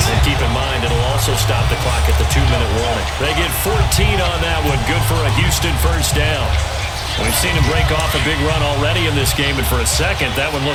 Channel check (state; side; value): identical; both; correlation 1.00